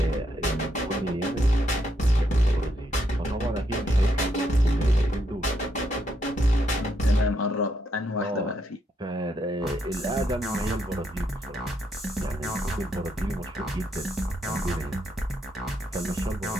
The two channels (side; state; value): both; normal; correlation 0.77